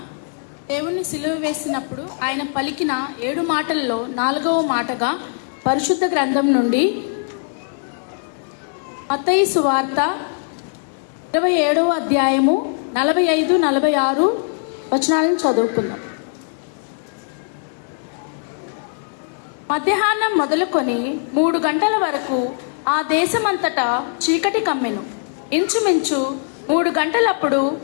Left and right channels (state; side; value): silent; right; 65 dB below the other